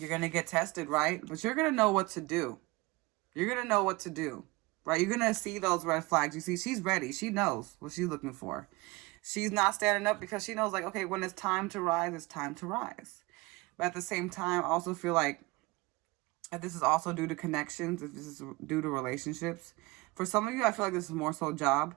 going to get tested, right? But you're going to know what to do. You're going to know what to do, right? You're going to see those red flags. You see, she's ready. She knows what she's looking for. She's not standing up because she knows, like, okay, when it's time to rise, it's time to rise. But at the same time, I also feel like this is also due to connections. If this is due to relationships. For some of you, I feel like this is more so job.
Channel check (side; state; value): left; quieter; 23.7 dB